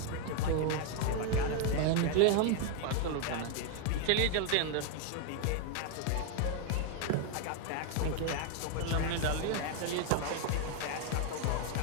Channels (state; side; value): different; both; correlation 0.00